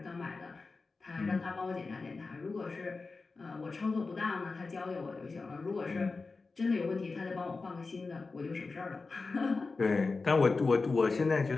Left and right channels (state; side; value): quieter; right; 4.0 dB